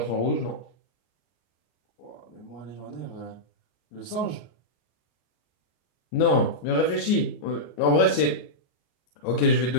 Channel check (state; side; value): late; right; 34 ms